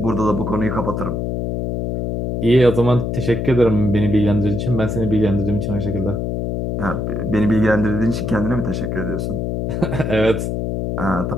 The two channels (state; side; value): noise; left; hum, 2 dB below the sound